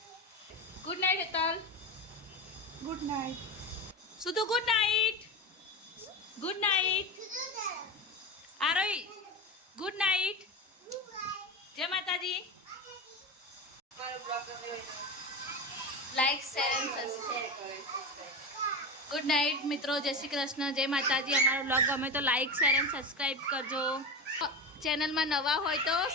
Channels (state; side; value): normal; both; correlation 0.22